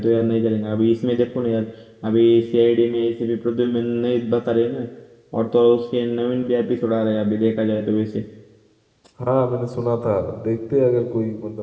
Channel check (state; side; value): identical; both; correlation 1.00